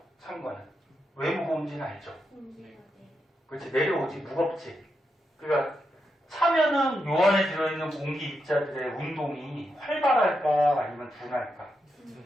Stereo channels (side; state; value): both; normal; correlation 0.84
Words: 찬 거는. 왜 무거운지는 알죠? 그렇지, 내려오지. 무겁지. 그러니까 차면은 요 안에 들어있는 공기 입자들의 운동이 활발할까 아니면 둔할까?